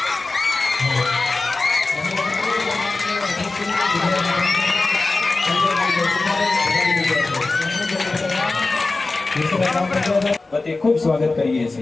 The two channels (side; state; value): right; quieter; 3.5 dB